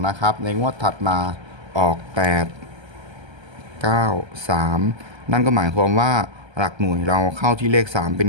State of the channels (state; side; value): late; left; 1.3 ms